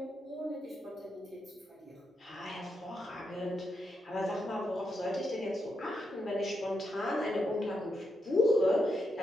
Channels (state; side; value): normal; both; correlation 0.83